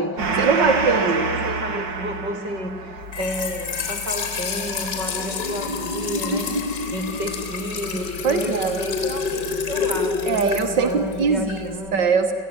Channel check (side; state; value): left; late; 5.2 ms